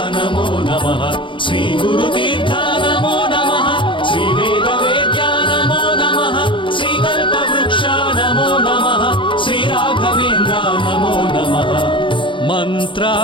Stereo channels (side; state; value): right; late; 0.24 ms